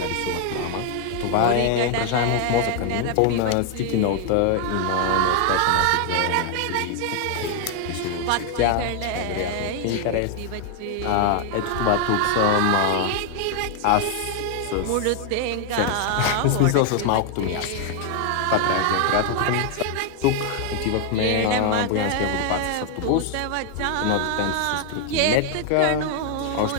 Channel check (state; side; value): different; both; correlation 0.00